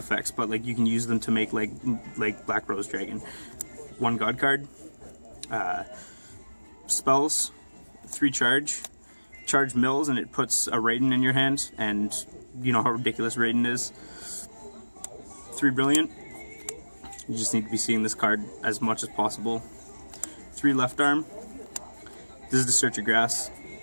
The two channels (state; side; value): inverted; both; correlation -1.00